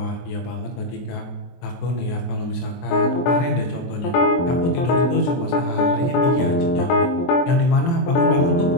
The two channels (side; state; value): right; late; 23 ms